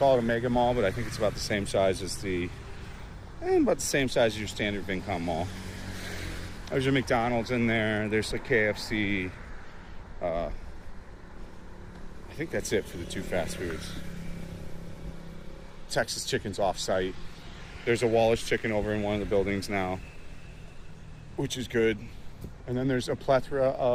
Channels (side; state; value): both; identical; correlation 1.00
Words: it a mega mall, but I think it's about the same size as about the same size as your standard Vincom mall. There's a McDonald's in there. There's a KFC. I think that's it for the 2 fast foods. Texas Chicken's off-site. There's a Wallace Chicken over in one of the buildings now, which is good. And then there's a plethora